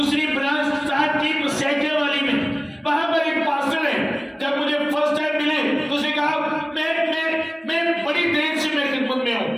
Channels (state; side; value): identical; both; correlation 1.00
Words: ब्रांच स्टार्ट की सैके वाली में, वहां पर एक पास्टर है। जब मुझे फर्स्ट टाइम मिले तो उसने कहा मैं बड़ी देर से मैं खिदमत में हूं।